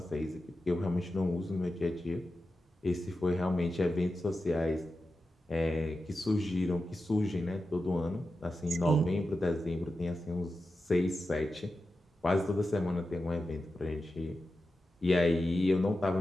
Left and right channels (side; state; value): both; normal; correlation 0.91